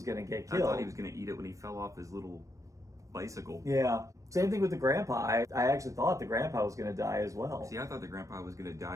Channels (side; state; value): left; late; 0.16 ms